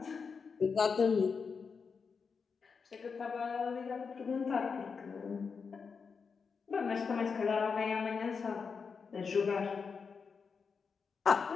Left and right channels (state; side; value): quieter; right; 5.5 dB